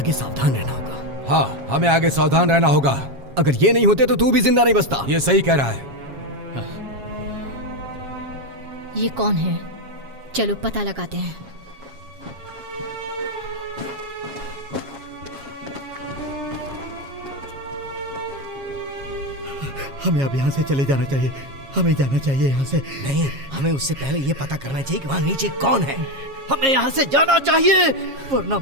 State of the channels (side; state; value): left; late; 7.3 ms